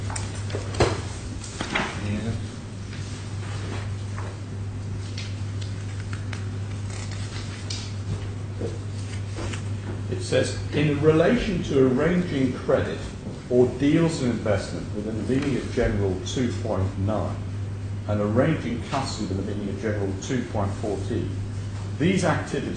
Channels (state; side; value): identical; both; correlation 1.00